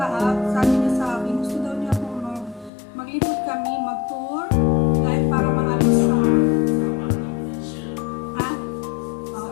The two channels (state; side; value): drops out; right; at 2.7 s